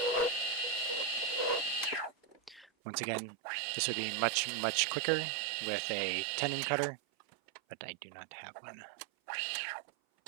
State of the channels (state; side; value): drops out; left; at 2.7 s